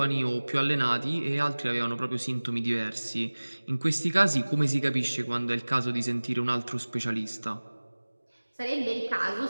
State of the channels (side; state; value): both; inverted; correlation -1.00